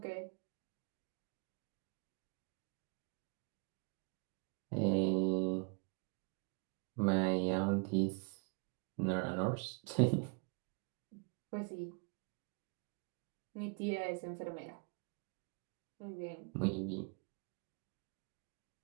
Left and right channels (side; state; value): left; quieter; 37.5 dB